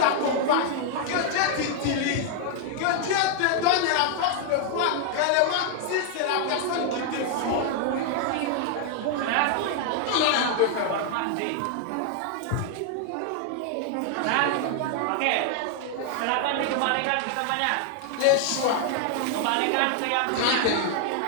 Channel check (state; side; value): different; both; correlation 0.00